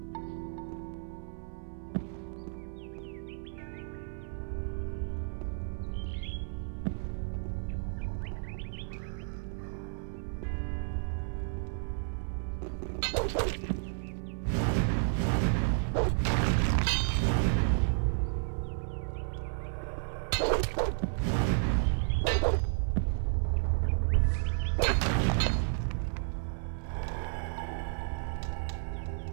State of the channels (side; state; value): left; silent; 56 dB below the other